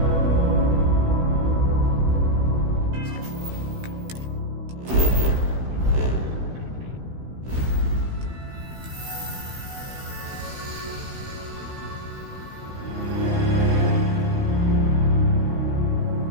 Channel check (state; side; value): late; left; 16 ms